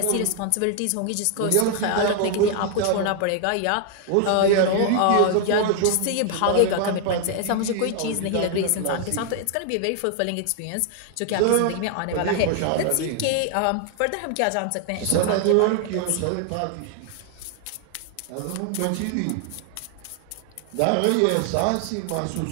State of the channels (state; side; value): different; both; correlation 0.00